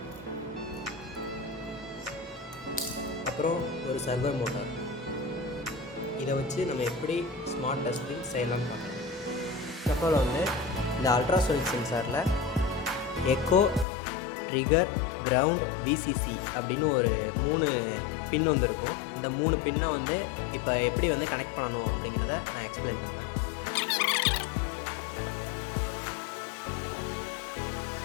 அப்புறம் ஒரு சர்வர் மோட்டார். இதை வச்சு நம்ம எப்படி ஸ்மார்ட் டஸ்ட்பின் செய்யலாம்னு பார்க்கலாம். அப்புறம் வந்து இந்த அல்ட்ராசோனிக் சென்சாரில் எக்கோ, ட்ரிகர், கிரவுண்ட், விசிசி அப்படின்னு ஒரு 3 பின் வந்து இருக்கும். இந்த 3 பின்னை வந்து இப்போ எப்படி வந்து கனெக்ட் பண்ணணும் அப்படிங்கிறத நான் எக்ஸ்பிளைன் பண்ணுறேன்.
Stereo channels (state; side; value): drops out; right; at 13.9 s